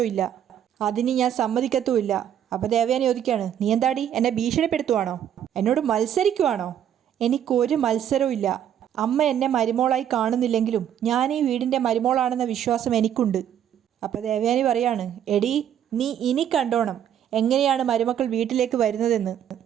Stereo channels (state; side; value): quieter; left; 9.9 dB